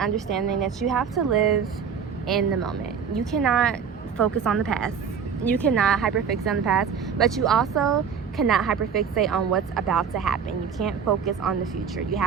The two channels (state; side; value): quieter; left; 6.9 dB